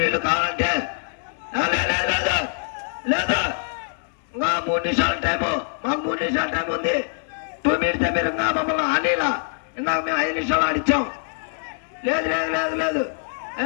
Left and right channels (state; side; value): silent; right; digital silence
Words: వీళ్ళు కావాలంటే. లేదు ఇంకా 3 నిమిషాల టైము. మాకు 3 నిమిషాల టైం ఉంది. 2 మినిట్స్ మీరు ఇంకా మమ్మల్ని ఆనేలా. ఇందాక మేము 5 నిమిషాలు ఆడిచ్చాం. లేదు